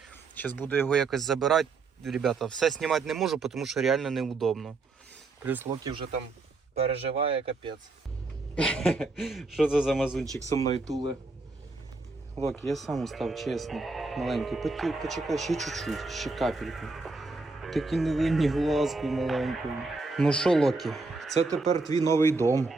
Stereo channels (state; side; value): quieter; left; 3.7 dB